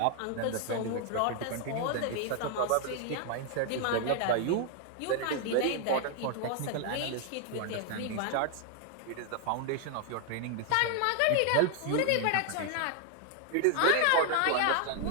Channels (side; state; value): both; different; correlation 0.00